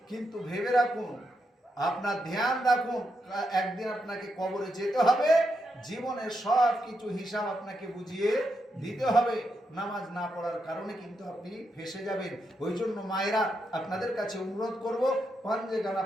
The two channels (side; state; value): both; normal; correlation 0.83